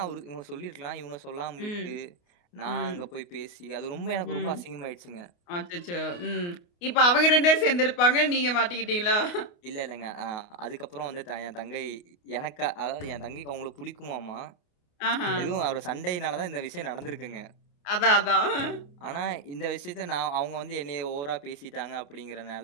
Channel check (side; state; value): right; late; 29 ms